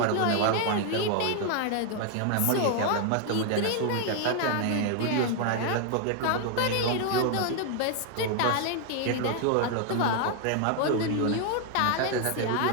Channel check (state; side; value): different; both; correlation 0.00